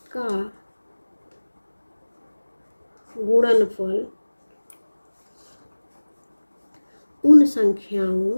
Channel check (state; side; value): inverted; both; correlation -1.00